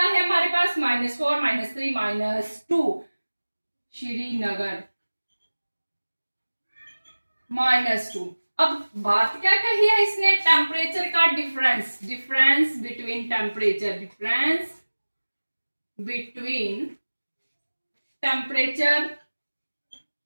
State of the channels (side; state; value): both; inverted; correlation -1.00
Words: हमारे पास -4 -3 -2। श्रीनगर -2। अब बात क्या कही है इसने, टेम्परेचर का difference, difference between temperature, difference between temperature